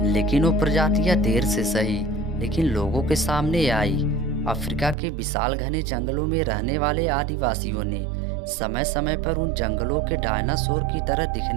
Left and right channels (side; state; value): left; drops out; at 5.0 s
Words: लेकिन वो प्रजातियां देर से सही लेकिन लोगों के सामने आई। अफ्रीका के विशाल घने जंगलों में रहने वाले आदिवासियों ने समय समय पर उन जंगलों के डायनासोर की तरह